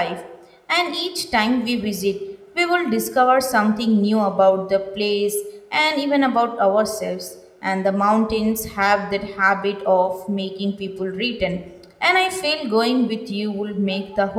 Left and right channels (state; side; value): identical; both; correlation 1.00